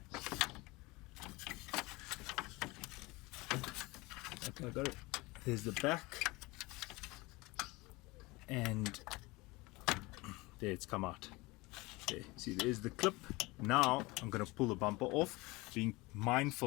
Okay, I got it. There's the back, and there it's come out. There, see, there's the clip. Now I'm going to pull the bumper off, being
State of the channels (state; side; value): quieter; right; 23.0 dB